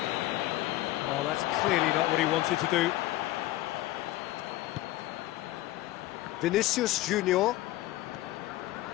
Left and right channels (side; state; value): right; quieter; 16.4 dB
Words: Oh, that's clearly not what he wanted to do. Vinicius Junior.